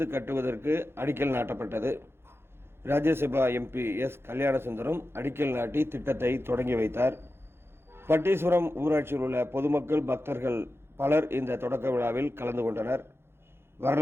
கட்டுவதற்கு அடிக்கல் நாட்டப்பட்டது. Rajya Sabha MP S. கல்யாணசுந்தரம் அடிக்கல் நாட்டி திட்டத்தை தொடங்கி வைத்தார். பட்டீஸ்வரம் ஊராட்சியில் உள்ள பொதுமக்கள் பக்தர்கள் பலர் இந்த தொடக்க விழாவில் கலந்து கொண்டனர்.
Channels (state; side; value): late; left; 0.12 ms